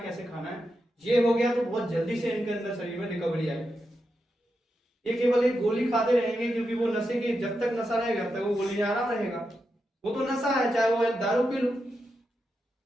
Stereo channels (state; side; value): normal; both; correlation 0.87